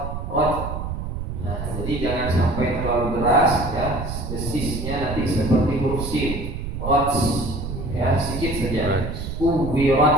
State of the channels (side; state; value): right; noise; rumble, 5 dB below the sound